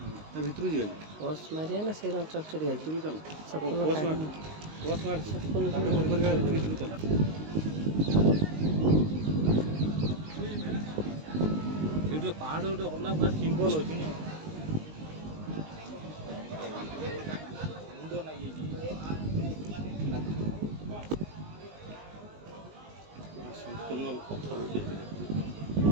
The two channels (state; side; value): late; left; 19 ms